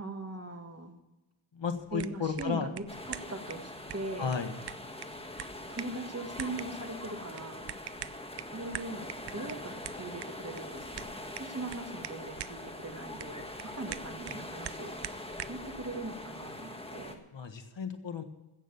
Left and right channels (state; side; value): normal; both; correlation 0.18